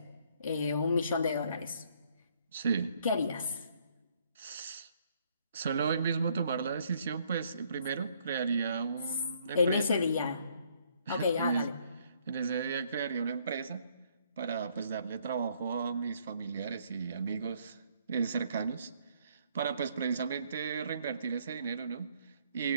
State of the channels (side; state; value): both; inverted; correlation -0.67